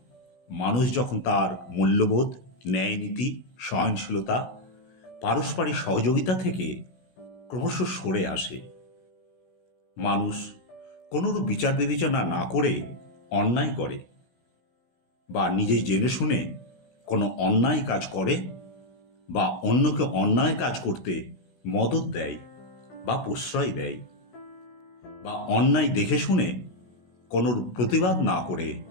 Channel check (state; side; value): late; right; 16 ms